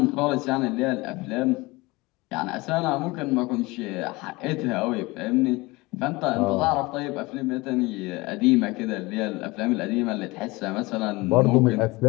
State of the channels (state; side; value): quieter; right; 22.8 dB